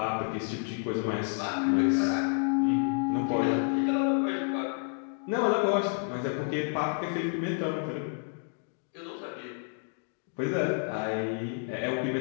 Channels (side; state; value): right; silent; 58 dB below the other